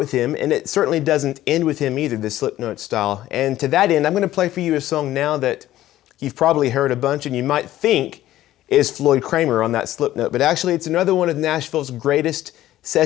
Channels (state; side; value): quieter; right; 14.1 dB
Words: him, and it certainly doesn't end with him either, the slip note style. And to that end, I'm going to play for you a song now that you've probably heard a bunch and you might think is Floyd Cramer on that slip note, but actually it's another one of Nashville's greatest